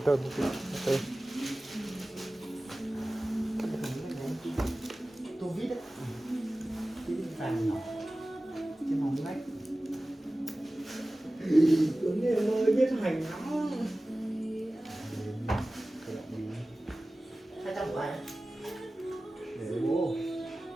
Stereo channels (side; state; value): both; normal; correlation 0.97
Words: tơn ok. Tô vít đấy, cái vàng nhỏ trên mỏng lách. Tuấn em ơi biết hành lắm. 200 của ai đấy? Để bố.